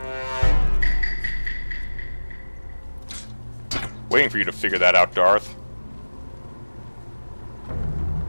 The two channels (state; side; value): inverted; both; correlation -1.00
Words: Waiting for you to figure that out, Darth.